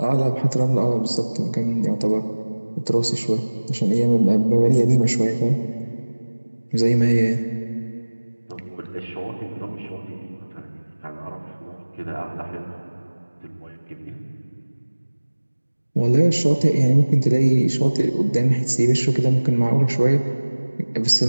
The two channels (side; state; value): both; inverted; correlation -1.00